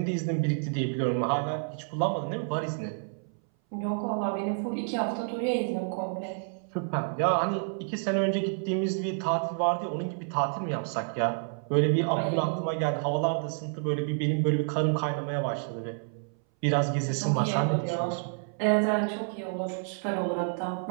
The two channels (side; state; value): left; silent; 58 dB below the other